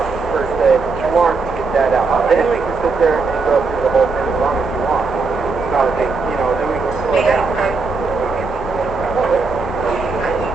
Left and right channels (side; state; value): left; quieter; 4.4 dB